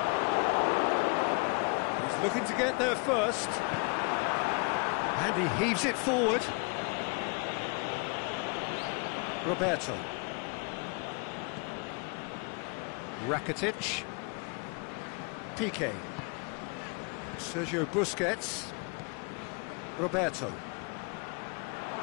He's looking to get there first. And he heaves it forward. Roberto. Rakitic. Piqué. Sergio Busquets. Roberto.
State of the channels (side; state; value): right; quieter; 33.5 dB